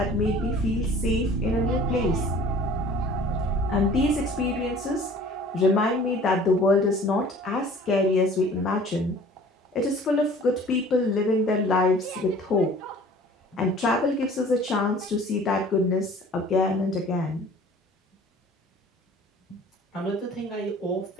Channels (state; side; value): normal; both; correlation 0.48